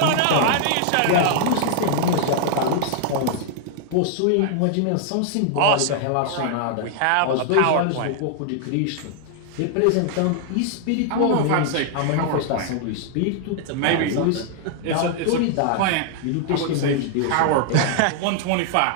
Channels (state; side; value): different; both; correlation 0.00